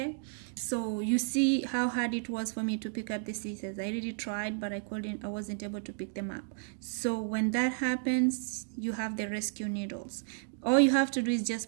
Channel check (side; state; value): left; silent; digital silence